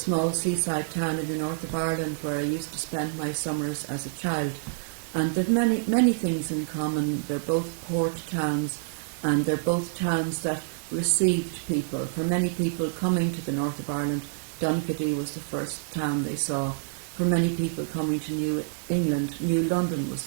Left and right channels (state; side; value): silent; left; digital silence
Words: seaside town in the north of Ireland where I used to spend my summers as a child. And they've many things in common. They're both port towns, and they're both towns that received people. For many people coming to the north of Ireland, Donaghadee was the first town they saw. For many people coming to New England, New London was